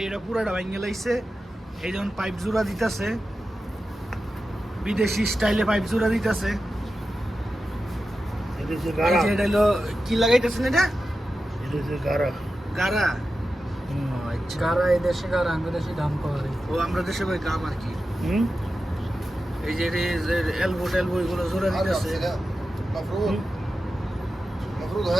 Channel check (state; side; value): normal; both; correlation 0.92